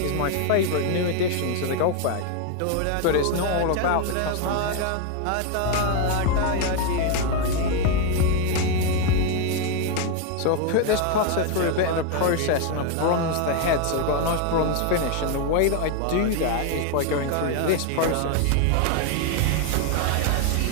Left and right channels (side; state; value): both; different; correlation 0.01